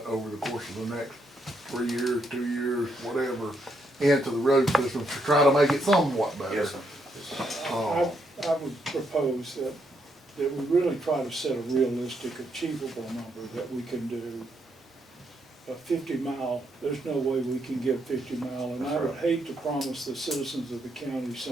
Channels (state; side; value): normal; both; correlation 0.77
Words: over the course of the next 3 years, 2 years, whatever, into the road system to try to make it somewhat better. Yes, sir. I would propose that we really try to set a realistic, achievable number that we can do. A 50-mile, there's no way we can give 50-mile, and I would hate to promise the citizens of the county